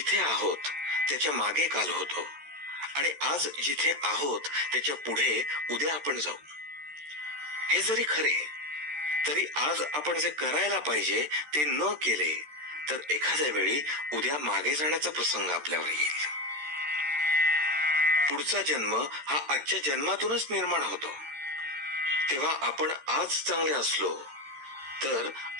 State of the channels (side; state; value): left; late; 13 ms